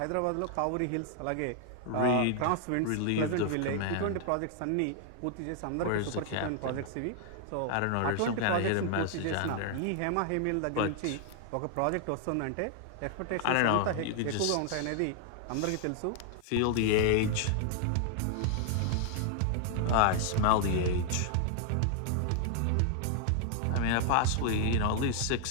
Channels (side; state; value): both; different; correlation 0.00